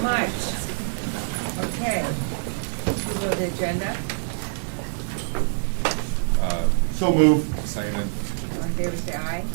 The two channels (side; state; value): left; silent; digital silence